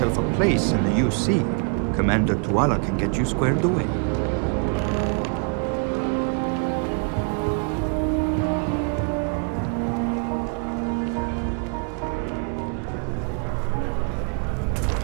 a place in the UC, Commander Tuala can get you squared away.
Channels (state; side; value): quieter; left; 37.3 dB